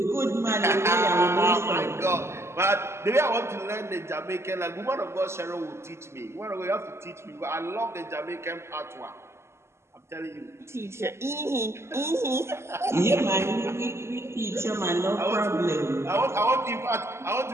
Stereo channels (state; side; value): late; left; 0.13 ms